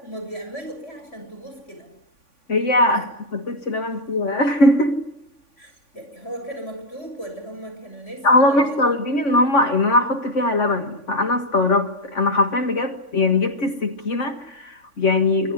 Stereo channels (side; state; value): right; late; 3.5 ms